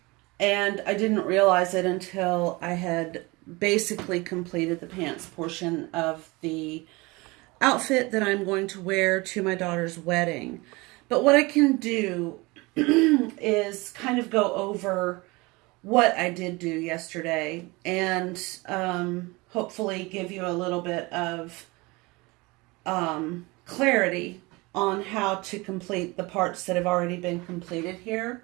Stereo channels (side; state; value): left; quieter; 24.1 dB